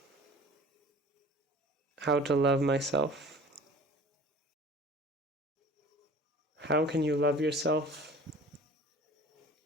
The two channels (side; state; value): both; normal; correlation 0.44